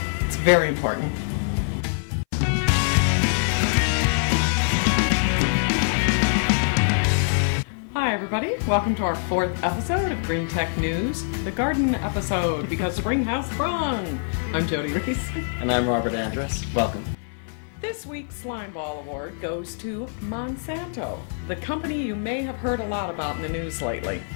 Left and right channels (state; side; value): silent; right; 58 dB below the other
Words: It's very important. Hi everybody, welcome to our 4th episode of Green Tech News, the garden episode, because spring has sprung. I'm Jodi Reese. And I'm Robert Andrus. Welcome. This week's Slime Ball Award goes to Monsanto, the company you may have heard a lot about in the news lately.